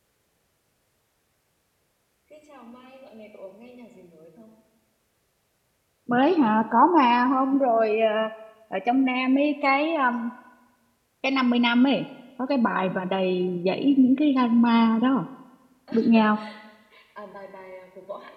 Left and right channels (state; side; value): identical; both; correlation 1.00